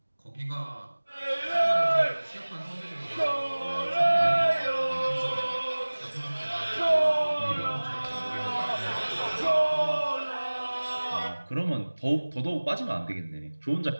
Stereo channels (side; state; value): both; inverted; correlation -1.00